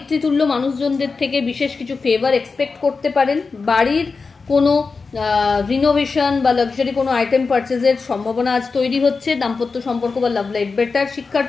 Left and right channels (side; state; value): right; quieter; 4.5 dB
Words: মানুষজনদের থেকে বিশেষ কিছু ফেভার এক্সপেক্ট করতে পারেন। বাড়ির কোনো রিনোভেশন বা লাক্সারি কোনো আইটেম পারচেজের সম্ভাবনা আজ তৈরি হচ্ছে। দাম্পত্য সম্পর্ক বা লাভ লাইফ বেটার।